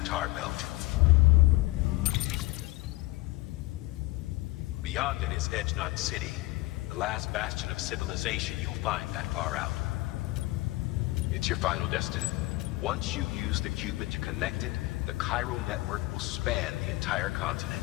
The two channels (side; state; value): right; quieter; 19.9 dB